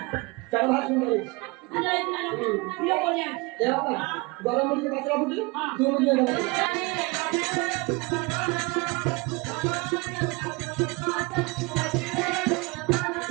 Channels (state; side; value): quieter; left; 27.0 dB